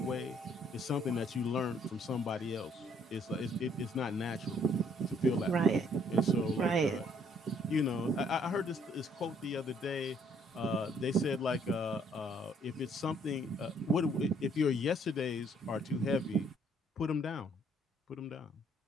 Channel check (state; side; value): normal; both; correlation 0.65